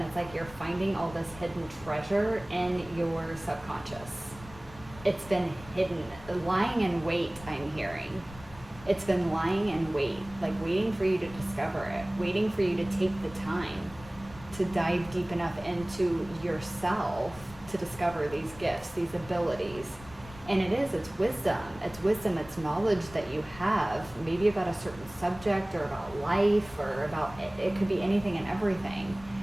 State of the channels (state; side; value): noise; left; rumble, 18 dB below the sound